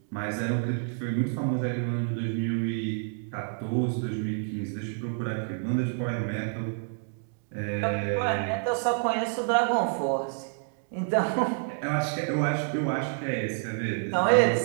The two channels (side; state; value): left; silent; 59 dB below the other